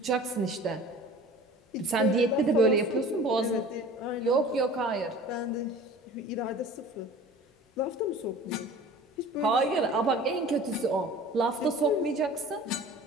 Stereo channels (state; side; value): normal; both; correlation 0.43